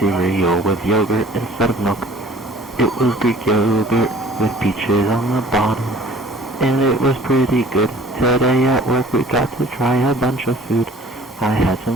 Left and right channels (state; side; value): normal; both; correlation 0.49